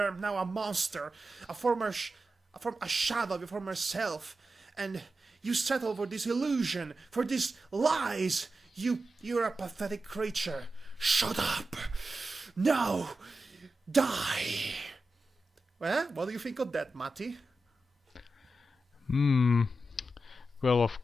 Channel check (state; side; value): normal; both; correlation 0.91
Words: now a monster, a shadow of your former self, and you settled for this illusion, for these lies. You're a pathetic creature. Shut up. Now, die. Well, what do you think of that, Matti? Well,